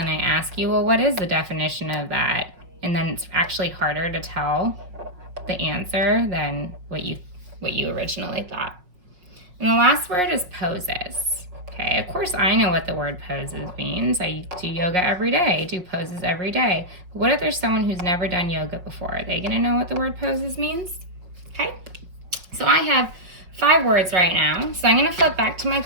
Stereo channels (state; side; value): late; left; 5.5 ms